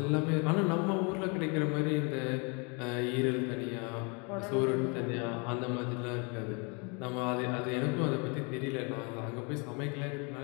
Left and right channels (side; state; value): right; quieter; 32.7 dB